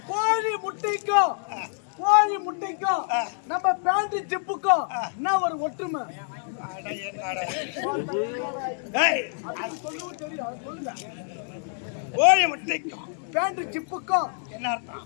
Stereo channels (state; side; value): silent; right; 60 dB below the other